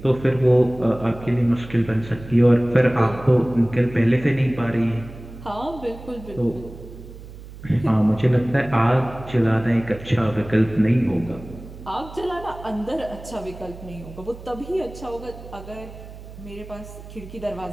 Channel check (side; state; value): right; noise; hum, 15 dB below the sound